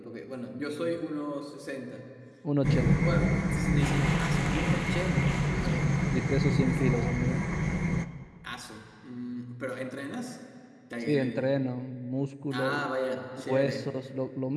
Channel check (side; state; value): both; identical; correlation 1.00